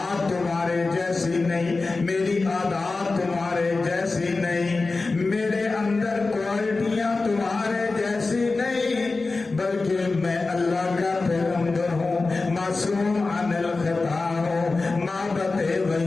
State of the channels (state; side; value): quieter; right; 3.7 dB